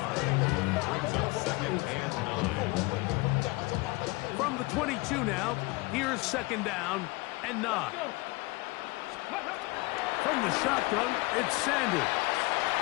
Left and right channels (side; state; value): right; quieter; 24.0 dB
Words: brings up second and 9. From the 22 now, here's second down and 9. From the shotgun, it's Sanders.